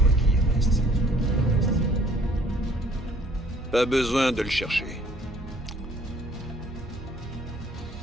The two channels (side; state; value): both; normal; correlation 0.58